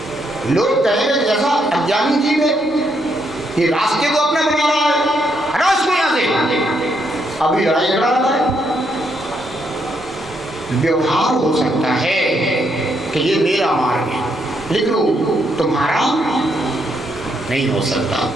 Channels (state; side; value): normal; both; correlation 0.76